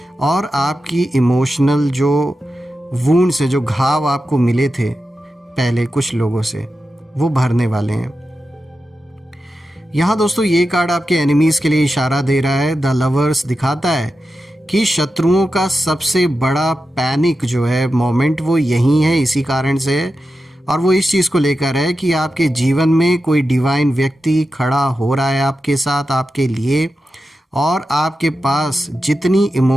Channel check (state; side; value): normal; both; correlation 0.91